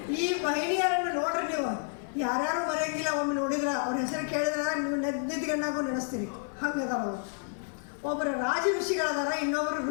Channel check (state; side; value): silent; right; 58 dB below the other